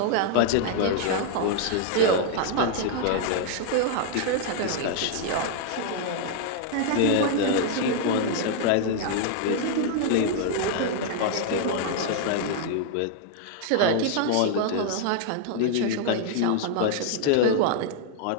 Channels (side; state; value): both; different; correlation 0.00